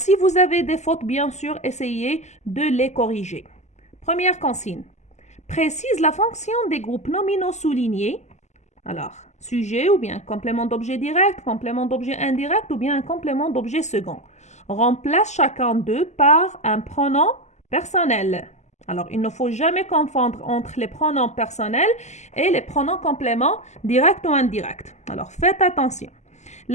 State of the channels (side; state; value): right; late; 0.33 ms